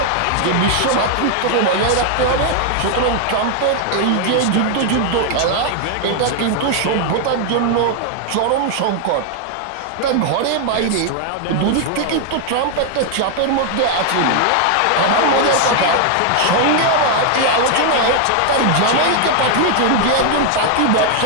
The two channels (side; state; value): both; different; correlation 0.00